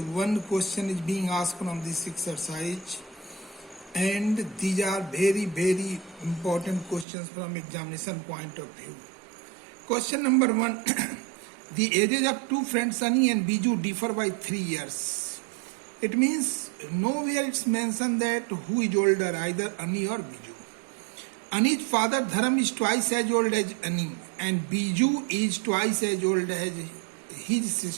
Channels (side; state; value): left; drops out; at 7.1 s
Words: one question is being asked from this exercise, and these are very important questions from examination point of view. Question number 1. The ages of two friends Sunny and Biju differ by 3 years. It means nowhere it's mentioned that who is older, either Annie or Biju. Ani's father Dharam is twice as old as Ani, and Biju is twice as old as his